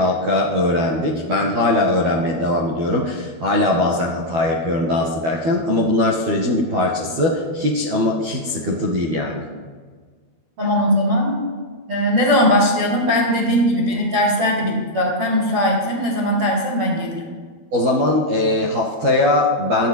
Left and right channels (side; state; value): left; late; 12 ms